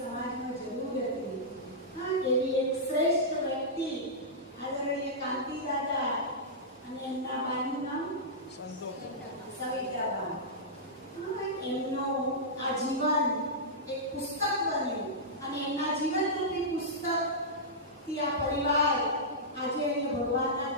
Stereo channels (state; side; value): normal; both; correlation -0.13